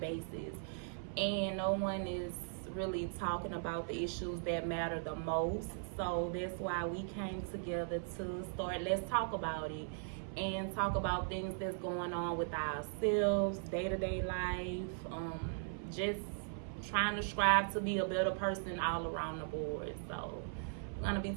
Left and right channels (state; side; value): silent; left; 52 dB below the other